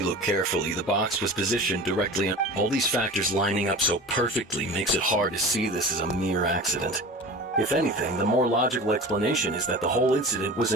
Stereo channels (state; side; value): normal; both; correlation 0.35